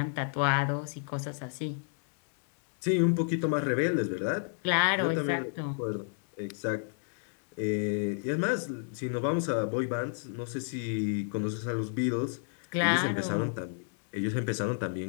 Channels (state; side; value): silent; right; digital silence